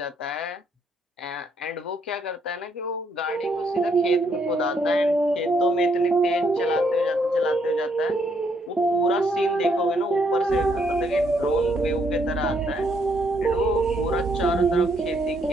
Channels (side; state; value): both; normal; correlation 0.72